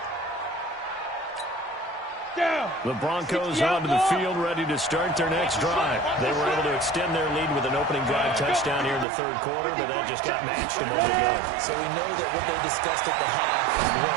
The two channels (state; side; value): drops out; left; at 9.1 s